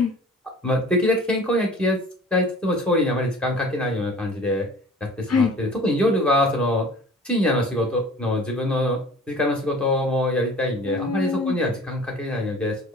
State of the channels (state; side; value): normal; both; correlation 0.46